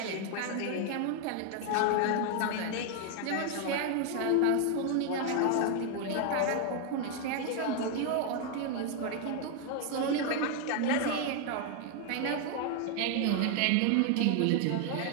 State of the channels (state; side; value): different; both; correlation 0.01